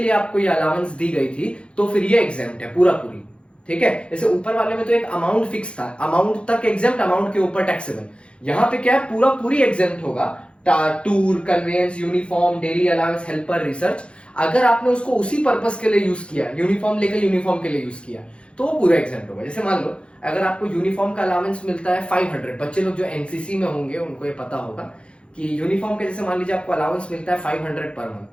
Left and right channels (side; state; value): right; late; 0.058 ms